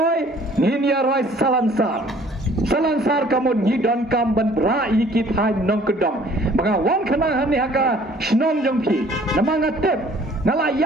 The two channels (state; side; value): normal; both; correlation 0.55